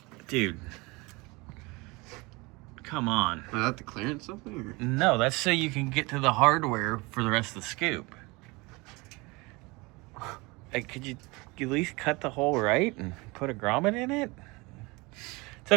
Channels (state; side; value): quieter; left; 25.1 dB